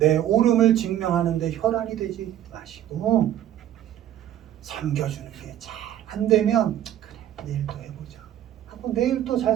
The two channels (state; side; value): quieter; left; 11.8 dB